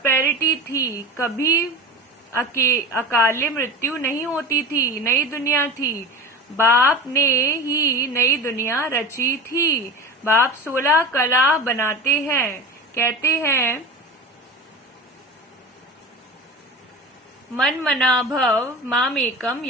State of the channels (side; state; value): both; normal; correlation 0.30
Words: थी, कभी अकाले मृत्यु नहीं होती थी। नई दुनिया थी, बाप ने ही नई दुनिया रची थी। बाप 16 कला बनाते हैं, कहते हैं मन मना भव मामेकम